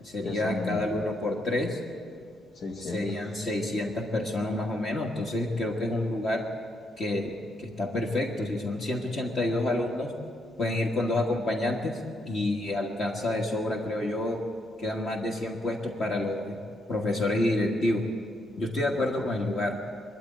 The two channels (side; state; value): both; normal; correlation 0.76